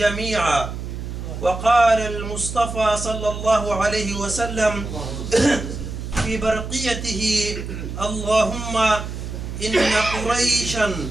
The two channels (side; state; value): right; noise; hum, 7 dB below the sound